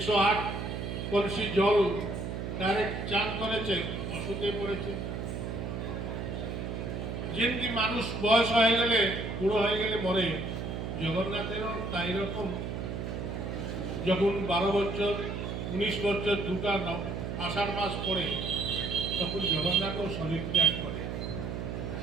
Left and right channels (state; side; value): noise; right; hum, 4 dB below the sound